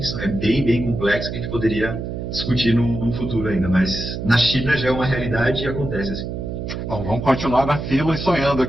é bem, bem complexa, que a gente poderia discutir no futuro ainda, mas na China já é uma realidade e acontece assim. Bom, vamos continuar na fila e sonhando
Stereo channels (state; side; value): noise; right; hum, 5 dB below the sound